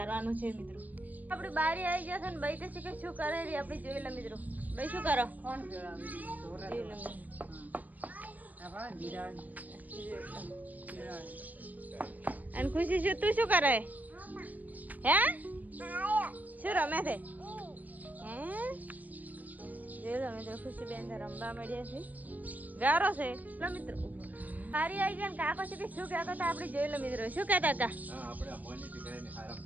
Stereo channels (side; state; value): left; late; 0.079 ms